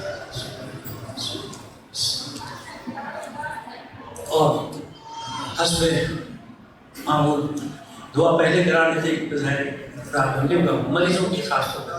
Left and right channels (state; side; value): identical; both; correlation 1.00